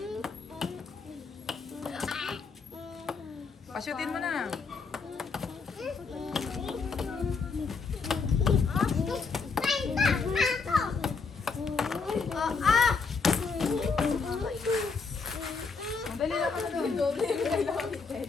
Pasyutin mo na. Madali lang ka na doon.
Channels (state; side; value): quieter; right; 4.8 dB